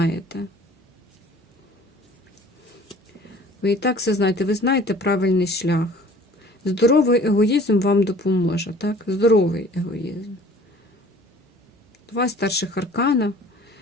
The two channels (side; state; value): both; normal; correlation 0.50